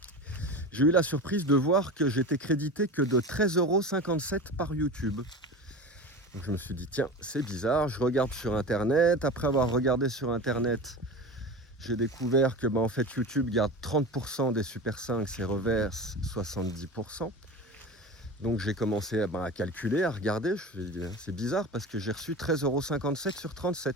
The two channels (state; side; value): normal; both; correlation 0.30